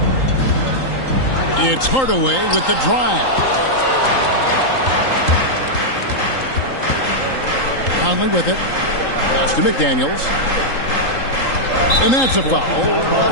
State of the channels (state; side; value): late; right; 3.8 ms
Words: It's Hardaway with the drive. Conley with it. Pass to McDaniels. And that's a foul